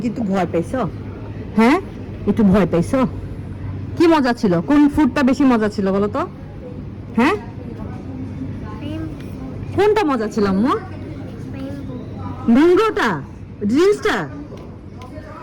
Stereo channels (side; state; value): both; identical; correlation 1.00